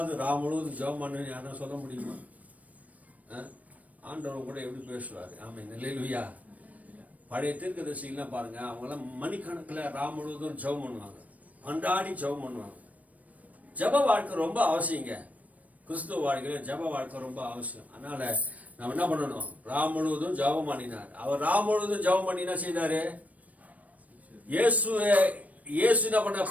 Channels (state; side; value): late; left; 0.070 ms